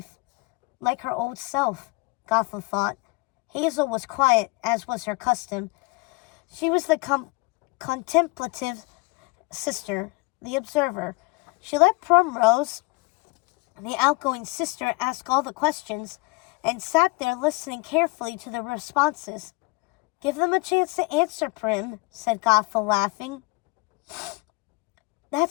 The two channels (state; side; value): quieter; right; 26.6 dB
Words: like her old self, Gothel thought. Hazel was quiet, as was her custom. She was the contemplative sister, the observer. She let Primrose, the outgoing sister, ask all the questions, and sat there listening carefully to the responses. "Give them a chance to answer, Prim," said Gothel, laughing.